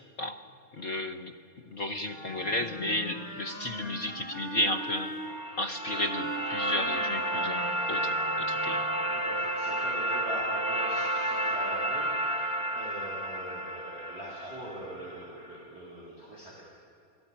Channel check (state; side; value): late; right; 4.2 ms